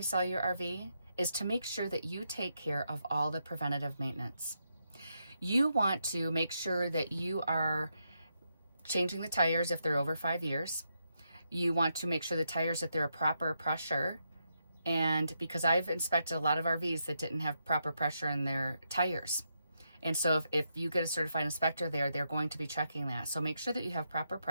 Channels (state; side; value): inverted; both; correlation -0.82